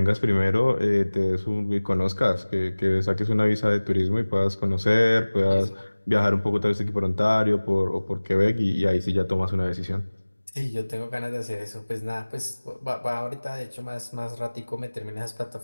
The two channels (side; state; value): both; inverted; correlation -1.00